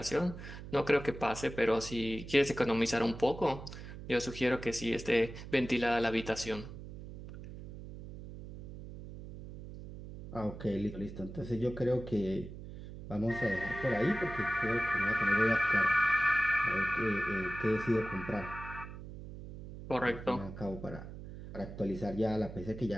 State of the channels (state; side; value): noise; right; hum, 12 dB below the sound